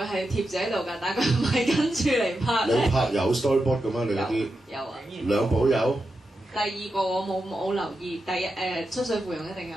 係貼住喺度㗎，但係佢唔係跟住嚟拍咧。你拍有 storyboard 嘅咩？你嗰啲有啊。兩部有。第二個我冇留意，第一出水芙蓉一定有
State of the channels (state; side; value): normal; both; correlation 0.88